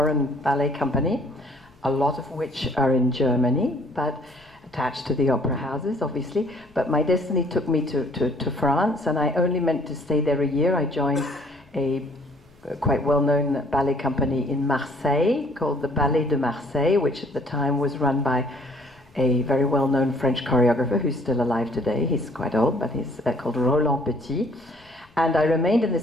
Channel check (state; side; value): noise; left; rumble, 29 dB below the sound